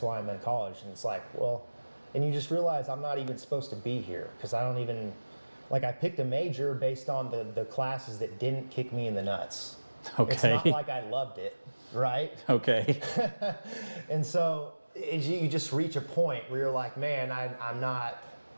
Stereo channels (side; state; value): both; inverted; correlation -1.00